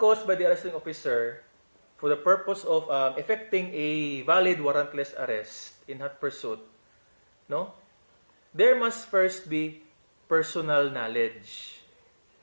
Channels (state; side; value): inverted; both; correlation -1.00